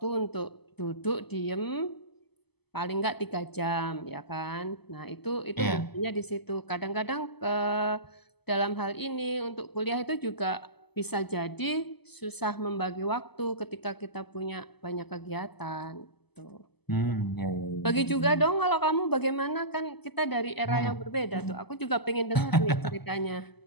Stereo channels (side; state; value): right; late; 0.98 ms